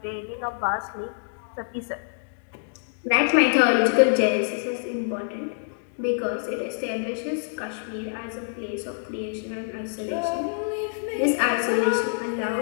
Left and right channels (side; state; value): right; silent; digital silence